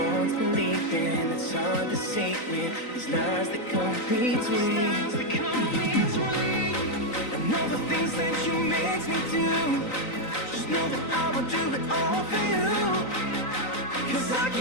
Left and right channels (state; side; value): late; right; 3.9 ms